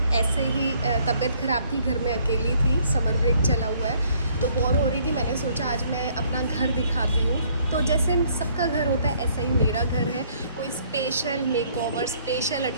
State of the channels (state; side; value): inverted; both; correlation -0.63